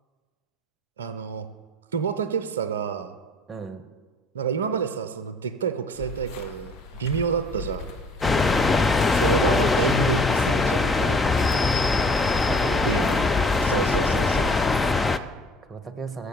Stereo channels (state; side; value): normal; both; correlation 0.53